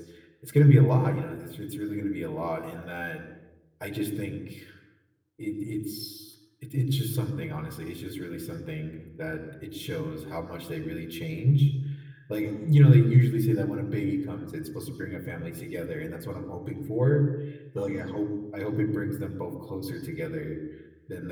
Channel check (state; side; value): identical; both; correlation 1.00